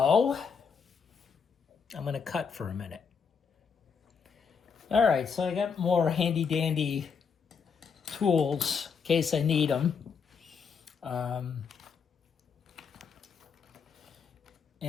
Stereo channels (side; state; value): right; quieter; 6.1 dB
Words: I'm going to cut for a minute. All right, so I got more handy-dandy tools in case I need them.